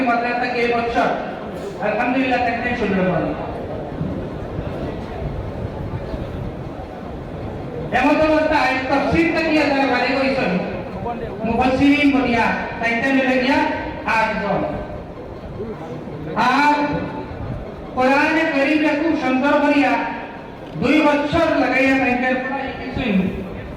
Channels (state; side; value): identical; both; correlation 1.00